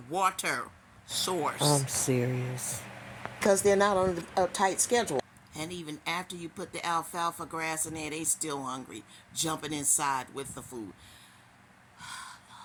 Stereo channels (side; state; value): both; identical; correlation 1.00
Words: source? I'm serious. Because they're not on a tight schedule. And even after you put the alfalfa grass in there, they still hungry, jumping inside with the food.